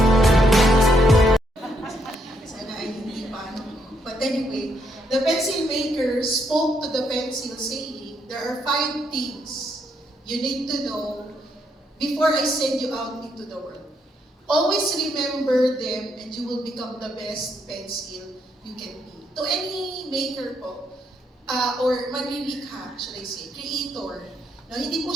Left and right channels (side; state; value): both; normal; correlation 0.76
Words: Sana ay hindi pa. But anyway, the pencil maker spoke to the pencil saying, there are 5 things you need to know before I send you out into the world. Always remember them and you will become the best pencil you can be. To any maker po, or manlilikha, should I say, creator, no, hindi po